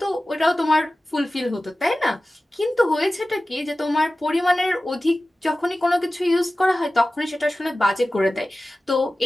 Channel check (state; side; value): normal; both; correlation 0.96